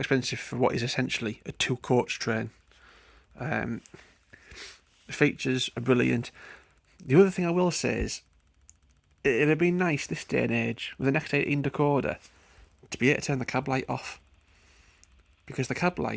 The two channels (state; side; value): identical; both; correlation 1.00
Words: for what is essentially a 2-coach train. The features are brilliant. The other thing I will say is, it'd have been nice this day and age, with an X18 decoder, to be able to turn the cab light off. Because the cab